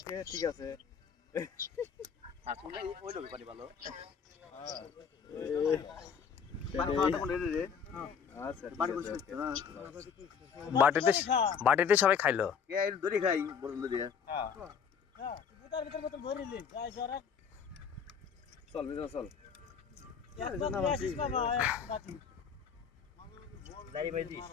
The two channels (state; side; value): quieter; right; 6.8 dB